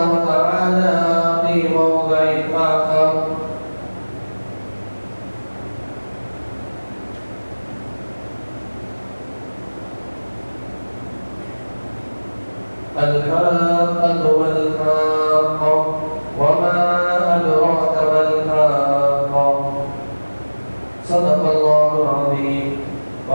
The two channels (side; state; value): both; inverted; correlation -1.00